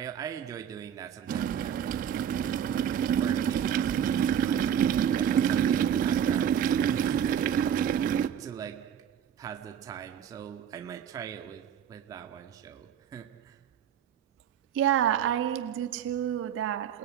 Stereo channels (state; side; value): quieter; left; 9.0 dB